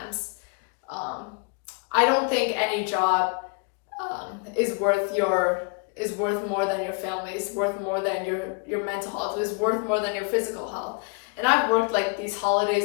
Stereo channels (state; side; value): quieter; right; 33.7 dB